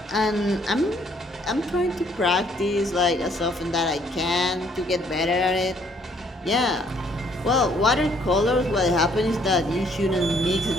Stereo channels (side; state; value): both; normal; correlation 0.65